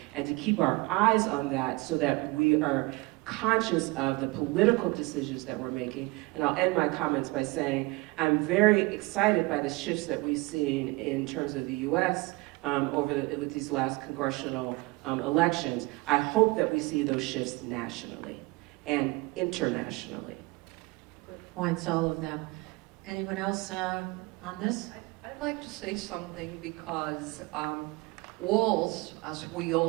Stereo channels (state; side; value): quieter; left; 23.7 dB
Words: and to keep our eyes on that so that we are conscious of the political decisions that we're making. And I'll end my comments by saying I'm very excited by the shifts that we've seen in terms of the US with these last congressional elections. I hope that we see those shifts nationally and internationally. Good points, all of them. Anyone else on this? I'd like to say something because walls, as we